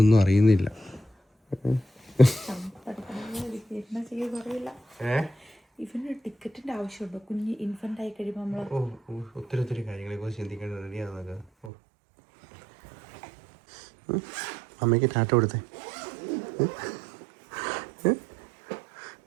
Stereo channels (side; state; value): left; drops out; at 11.7 s